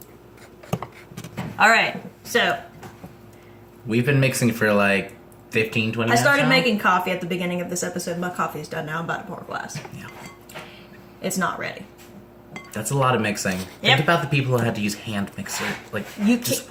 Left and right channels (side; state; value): both; identical; correlation 1.00